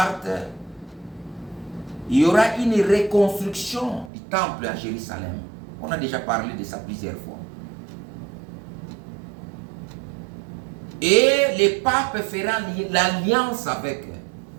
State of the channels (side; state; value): left; drops out; at 4.1 s